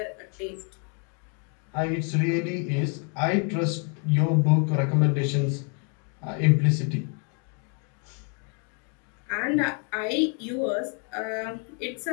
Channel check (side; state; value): right; quieter; 38.9 dB